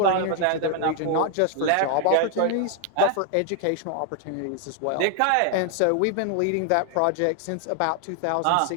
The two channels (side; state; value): both; different; correlation 0.00